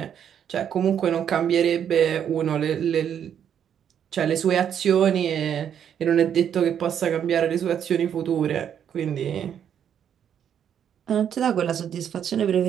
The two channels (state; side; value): quieter; left; 8.9 dB